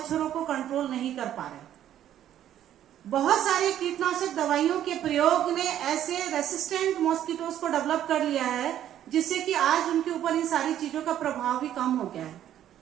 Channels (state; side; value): quieter; left; 11.3 dB